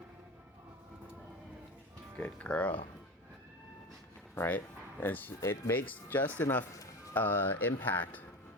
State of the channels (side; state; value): both; normal; correlation 0.27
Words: Good girl. Right? And it makes just enough impact